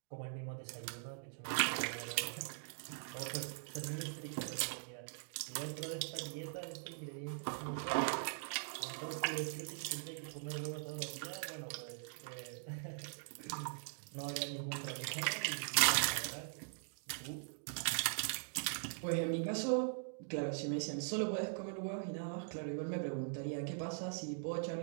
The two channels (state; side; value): silent; left; digital silence